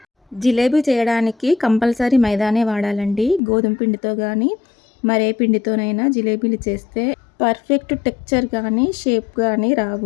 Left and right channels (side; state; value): right; drops out; at 3.4 s